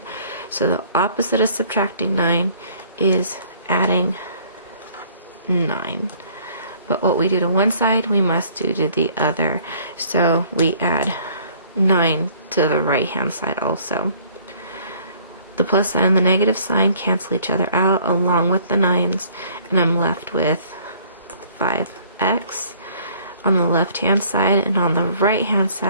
So the opposite of subtracting 9 is adding 9. But what we do to one side, we must do to the other. So we add 9 to the right hand side also. The plus sign and the negative sign cancel each other out along with the 9s, and I'm left with 5x on the left hand side, and on the right hand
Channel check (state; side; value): inverted; both; correlation -0.57